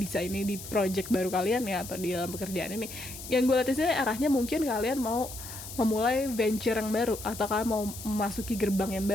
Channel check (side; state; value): left; noise; hiss, 12 dB below the sound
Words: ini di project baru kalian ya, atau di dalam pekerjaan ini, yang gue lihat di sini arahnya mungkin kalian mau memulai venture yang baru, atau kalian mau memasuki gerbang yang